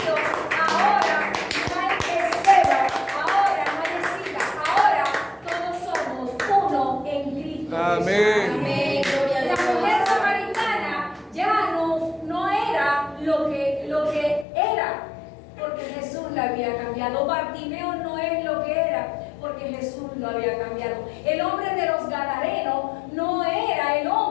ahora no hay esclavo, ahora no hay escita, ahora todos somos uno en Cristo. Amén. Amén. La mujer samaritana ya no era lo que era, porque Jesús la había cambiado. Bartimeo no es lo que era, porque Jesús lo había cambiado. El hombre de los Gadarenos no era el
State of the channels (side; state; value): right; drops out; at 14.5 s